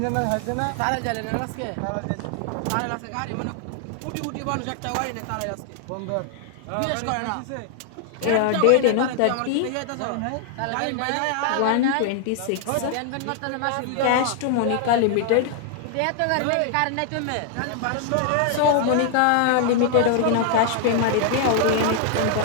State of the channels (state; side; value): different; both; correlation 0.00